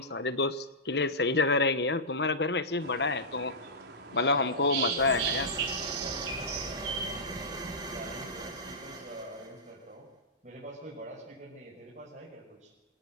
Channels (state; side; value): normal; both; correlation -0.14